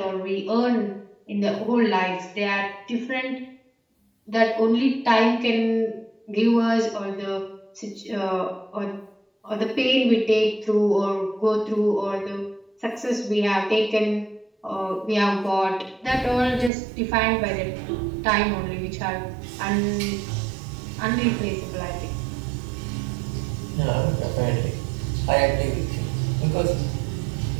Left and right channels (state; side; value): drops out; left; at 16.7 s